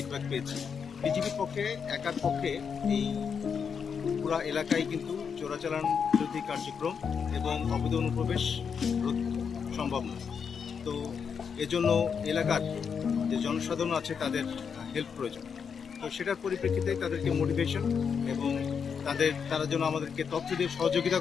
পেয়েছি। বিজেপির পক্ষে একার পক্ষে এই পুরা এলাকায় কিন্তু চোরাচালান বিরোধী কার্যক্রম এবং অবৈধ অনুপ্রবেশ রোধ সম্ভব নয়। তো এজন্য এলাকার যে জনসাধারণ আছে তাদের হেল্প প্রয়োজন। তো সেটার পরিপ্রেক্ষিতে তাদেরকে মোটিভেশন এবং তারা যেন আমাদেরকে তথ্য দিয়ে সহযোগিতা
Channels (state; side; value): quieter; right; 6.6 dB